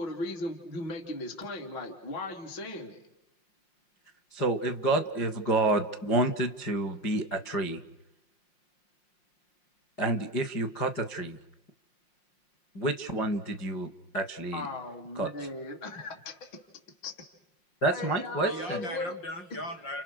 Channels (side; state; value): right; late; 5.6 ms